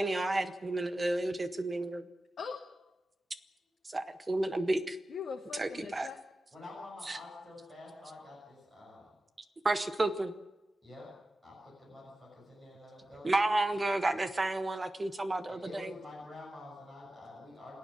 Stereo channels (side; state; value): both; normal; correlation 0.94